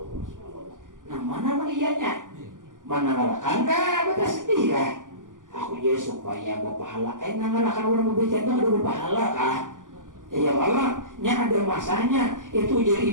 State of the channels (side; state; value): left; late; 0.88 ms